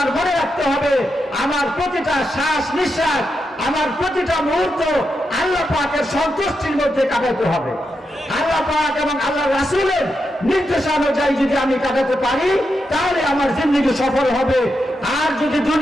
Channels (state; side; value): normal; both; correlation 0.85